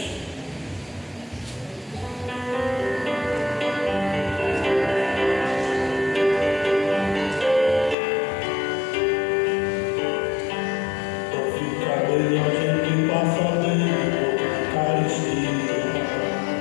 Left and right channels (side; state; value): right; drops out; at 8.0 s